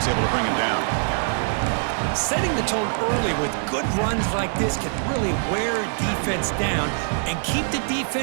able to bring him down. Setting the tone early with good runs like this can really wear defense down and keep the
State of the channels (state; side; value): silent; left; digital silence